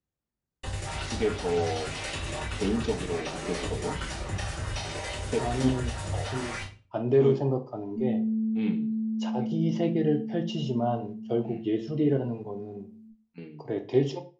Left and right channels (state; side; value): identical; both; correlation 1.00